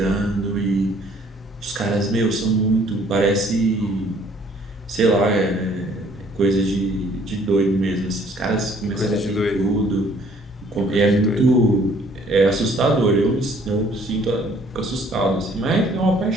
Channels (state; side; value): normal; both; correlation 0.60